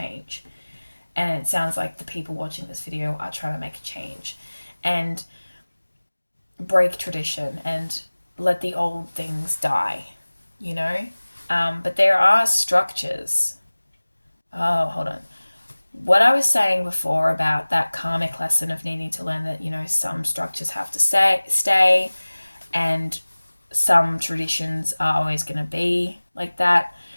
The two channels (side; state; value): both; inverted; correlation -1.00